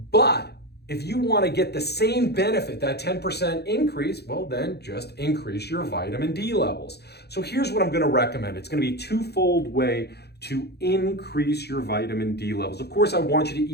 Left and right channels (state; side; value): late; right; 0.48 ms